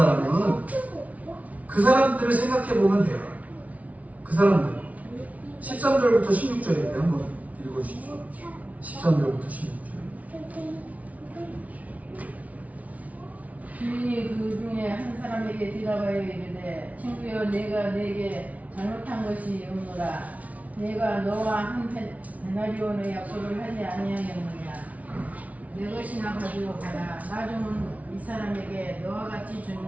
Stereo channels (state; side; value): late; left; 0.069 ms